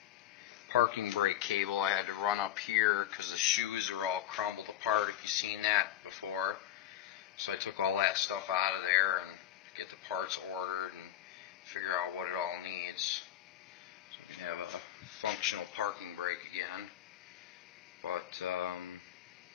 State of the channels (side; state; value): right; quieter; 12.3 dB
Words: parking brake cable I had to run up here because the shoes are all crumbled apart, if you've seen that before. So I took all that stuff out of there and get the parts ordered and figure out what it all needs so we can have a functional parking brake again. But